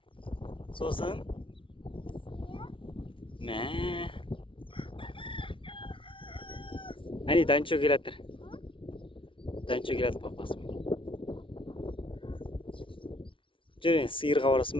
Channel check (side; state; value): right; late; 0.25 ms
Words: Сосын? Мә. Әне Данчо келатыр. Данчо келатыр папасымен. Жүр, сиырға барасың